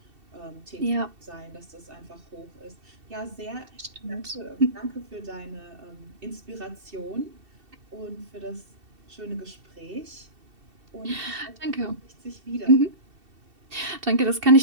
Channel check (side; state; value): left; late; 2.7 ms